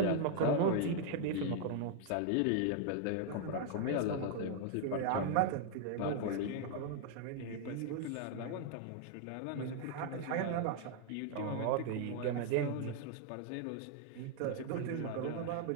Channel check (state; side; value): different; both; correlation 0.00